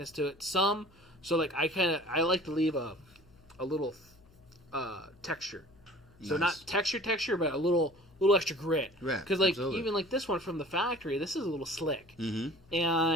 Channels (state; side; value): noise; left; hum, 27 dB below the sound